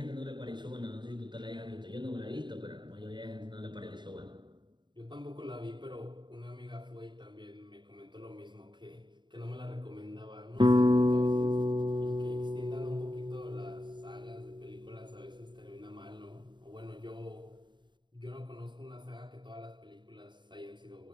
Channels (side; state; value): left; late; 0.22 ms